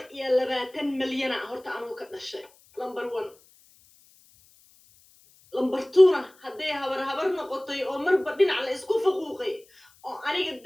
milyan horta anuu ka dhashay number 1 number 2 hadday habar noqotay oo marba dhinac la isku faquuqay oo aniga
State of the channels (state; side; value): noise; left; hiss, 29 dB below the sound